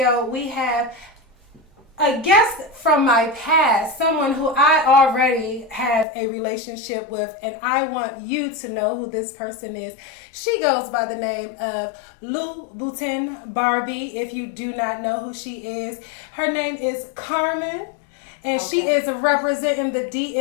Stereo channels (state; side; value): drops out; right; at 6.1 s